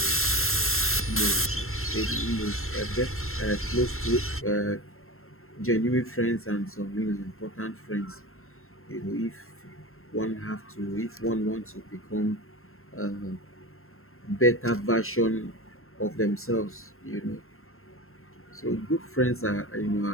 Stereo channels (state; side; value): late; right; 0.62 ms